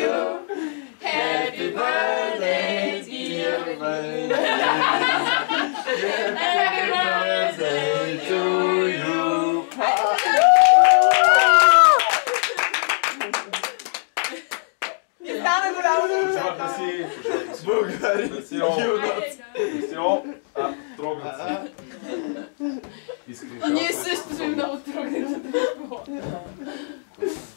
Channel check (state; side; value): silent; right; digital silence